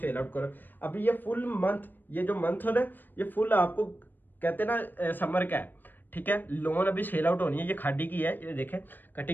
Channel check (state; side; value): late; right; 0.091 ms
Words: आउट करो। अभी ये फुल मंथ, ये जो मंथ हो रहा है ये फुल आपको कहते हैं ना समर का है, ठीक है। लोन अभी सेल आउट होनी है। ये खादी की है, ये देखें